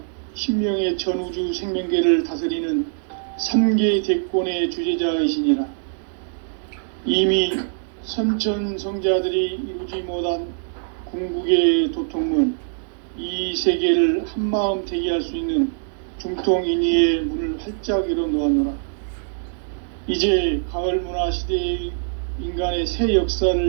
신명의 전우주 생명계를 다스리는 3계 대권의 주재자이시니라. 이미 선천성자들이 이루지 못한 궁극의 도통문, 이 세계를 한마음 되게 할 수 있는 중통인의의 문을 활짝 열어놓았노라. 이제 가을 문화 시대의 인간의 새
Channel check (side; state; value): left; silent; digital silence